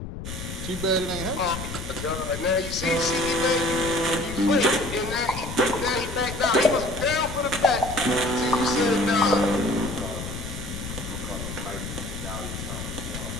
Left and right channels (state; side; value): noise; left; rumble, 8 dB below the sound